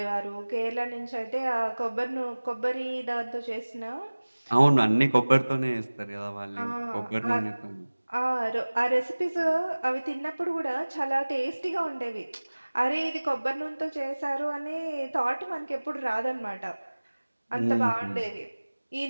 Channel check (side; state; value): both; inverted; correlation -1.00